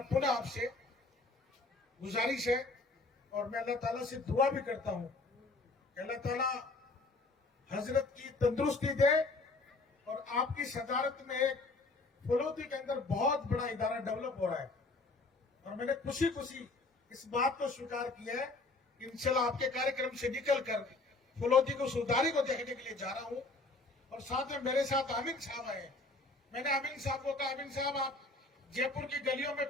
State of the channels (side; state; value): right; quieter; 3.3 dB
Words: पुनः आपसे गुजारिश है और मैं अल्लाह ताला से दुआ भी करता हूं कि अल्लाह ताला हजरत की तंदुरुस्ती दे और आपकी सदारत में एक फलोदी के अंदर बहुत बड़ा इदारा डेवलप हो रहा है। और मैंने खुशी खुशी इस बात को स्वीकार किया है कि इंशाल्लाह आपके कार्यक्रम से निकलकर फलोदी को सुधारी को देखने के लिए जा रहा हूं। और साथ में मेरे साथ आमिन साहब आए। मैंने आमिन साहब को कहा, आमिन साहब आप जयपुर की गलियों में